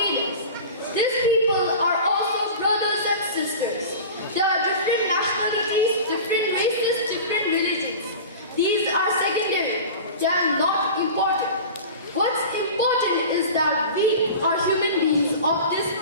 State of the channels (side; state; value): both; inverted; correlation -0.35